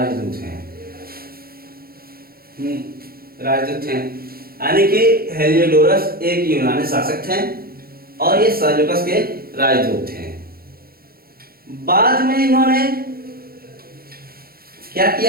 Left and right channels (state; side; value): late; left; 0.44 ms